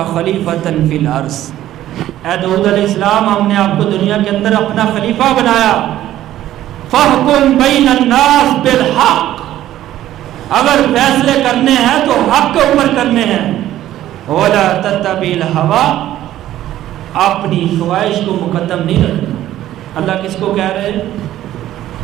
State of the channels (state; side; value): quieter; left; 13.3 dB